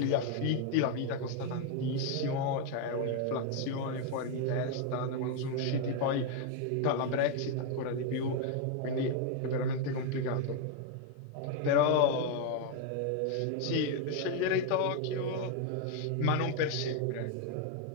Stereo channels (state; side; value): different; both; correlation 0.01